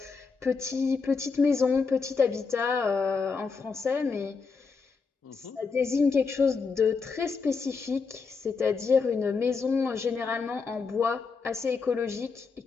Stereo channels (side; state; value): right; quieter; 4.9 dB